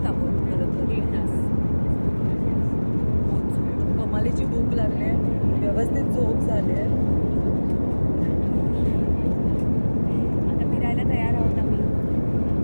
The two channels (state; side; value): inverted; both; correlation -1.00